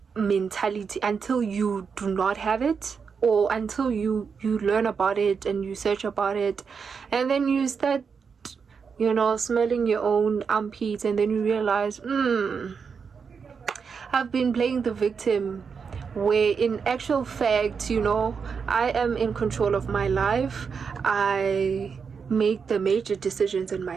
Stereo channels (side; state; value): left; quieter; 5.9 dB